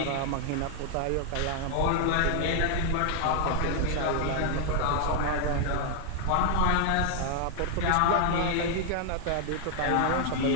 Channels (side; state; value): both; different; correlation 0.00